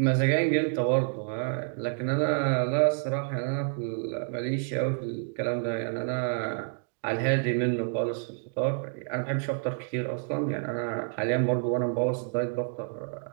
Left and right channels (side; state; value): left; silent; digital silence